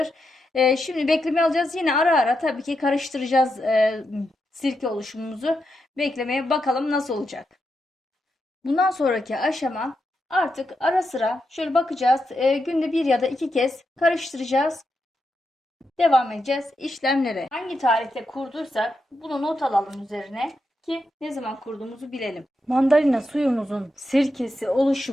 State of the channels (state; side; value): normal; both; correlation 0.85